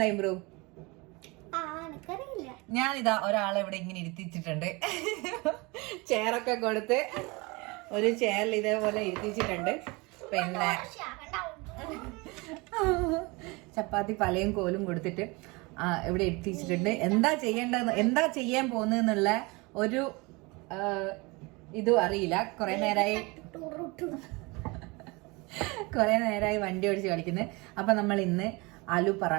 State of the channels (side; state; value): left; quieter; 26.0 dB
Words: ഇംപ്രൂവ്? ഞാനിതാ ഒരാളെ ഇവിടെ ഇങ്ങനെ ഇരുത്തിച്ചിട്ടുണ്ട്. ചെയറൊക്കെ കൊടുത്ത് ഒരു ചെയറിൽ ഇതേപോലെ ഇരുത്തിച്ചിട്ടുണ്ട്. പിന്നെ ചപ്പാത്തി പലയും കോലും കൊടുത്തിട്ട് ഇവിടെ ഇരുത്തിച്ചിട്ടുണ്ട്. എന്താ ചെയ്യാൻ പോകുന്നുള്ള ഒരു ഇതും അറിയില്ല. കുറെ നേരമായി വണ്ടി ഓടിച്ച് കളിക്കുന്നത്. അപ്പൊ നമ്മൾ ഇന്ന് ആലു